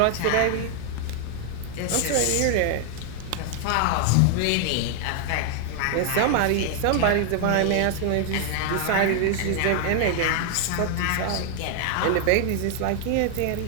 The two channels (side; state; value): both; different; correlation 0.00